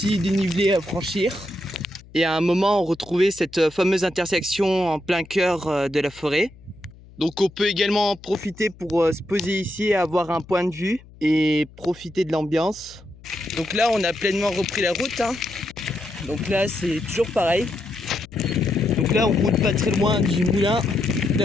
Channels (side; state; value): left; noise; hum, 22 dB below the sound